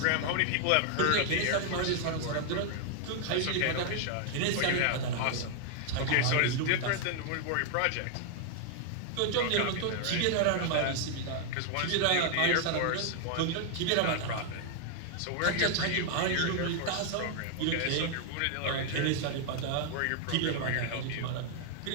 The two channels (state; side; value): different; both; correlation 0.00